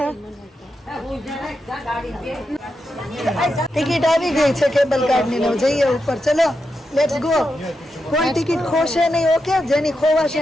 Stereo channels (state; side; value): normal; both; correlation 0.86